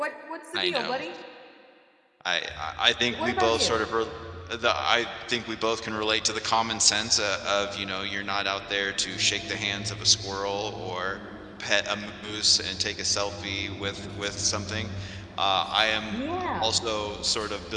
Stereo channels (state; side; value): identical; both; correlation 1.00